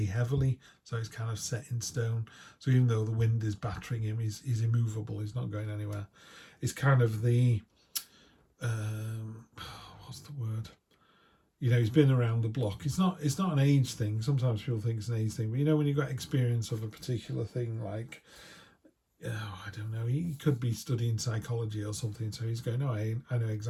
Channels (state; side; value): identical; both; correlation 1.00